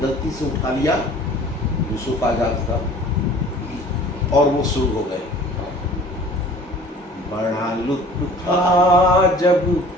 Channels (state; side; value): normal; both; correlation 0.48